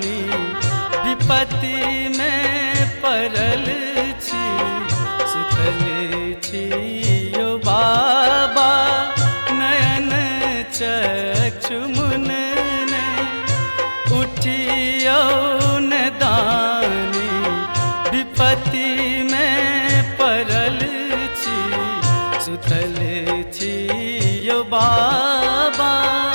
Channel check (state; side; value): inverted; both; correlation -1.00